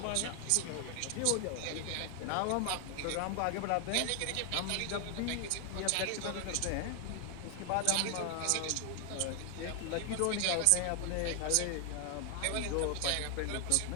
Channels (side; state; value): both; different; correlation 0.00